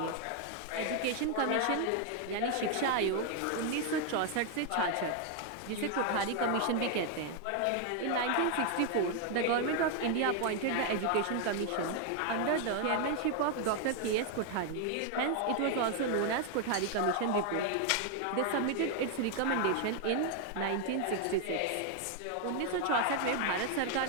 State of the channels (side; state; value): both; different; correlation 0.01